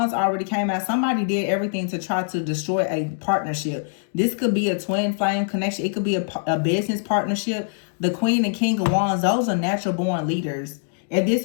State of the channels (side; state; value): right; silent; digital silence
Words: already came out. Somebody did everything to try to destroy a partnership. This could be a twin flame connection. It could be a business partnership. The Queen and King of Wands, those are natural born leaders. If this